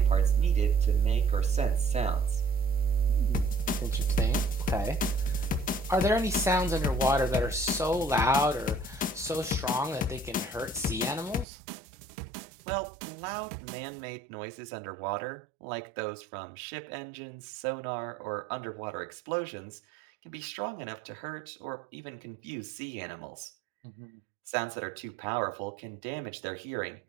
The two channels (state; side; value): drops out; left; at 11.5 s